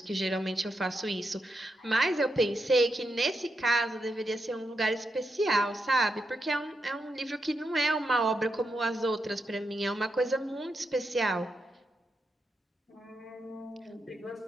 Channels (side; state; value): both; normal; correlation 0.84